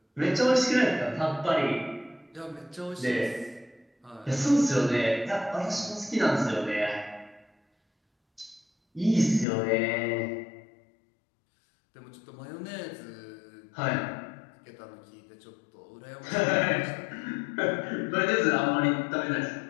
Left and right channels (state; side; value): drops out; right; at 9.5 s